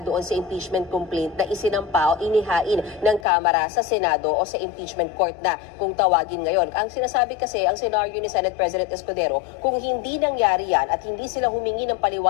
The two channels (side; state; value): right; drops out; at 3.2 s